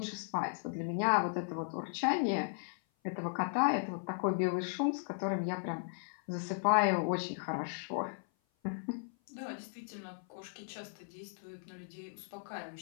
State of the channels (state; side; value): silent; right; 54 dB below the other